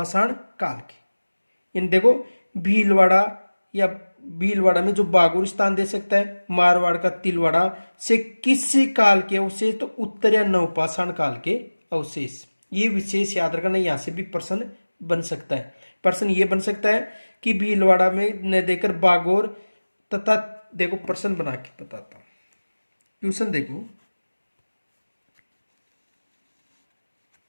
काल के। इन देखो भीलवाड़ा या भीलवाड़ा में जो बागोर स्थान दे सकता है, मारवाड़ का तिलवाड़ा से किस काल के अवशेष? तो उत्तर या नवपाषाण काल के अवशेष। ये विशेष याद रखना, यहां से भी प्रश्न बन सकता है। प्रश्न ये बन सकता है कि भीलवाड़ा में न देकर बागोर तथा देखो प्रश्न बना के बताता हूं। क्वेश्चन देखो,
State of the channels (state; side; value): inverted; both; correlation -1.00